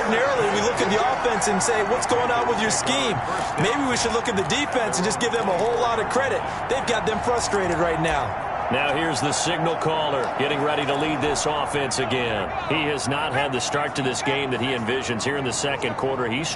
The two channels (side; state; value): both; identical; correlation 1.00